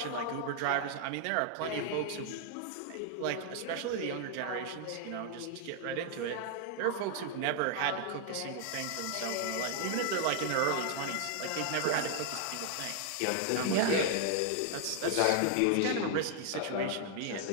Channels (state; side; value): different; both; correlation 0.00